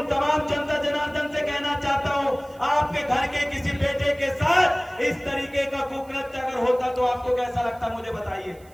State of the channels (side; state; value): right; noise; hiss, 28 dB below the sound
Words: तमाम जनता जनार्दन से कहना चाहता हूं, आपके घर के किसी बेटे के साथ इस तरीके का कुकृत्य अगर होता तो आपको कैसा लगता? मुझे बताइए